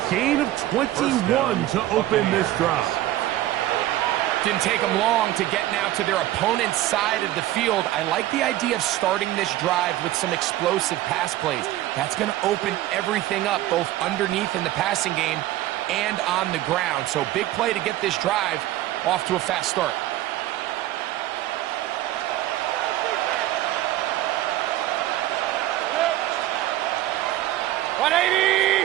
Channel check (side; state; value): left; quieter; 14.9 dB